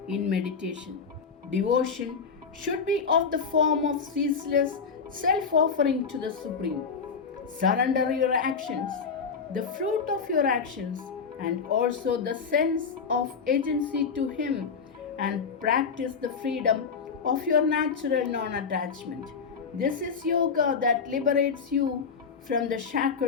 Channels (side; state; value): right; quieter; 5.7 dB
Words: in meditation. Devotion should be of the form of ceaseless self-offering to the Supreme. Surrender your actions, the fruit of your actions, and also the sense of agency to Him, and practice the freedom of your natural non-attachment. This is yoga that liberates you from the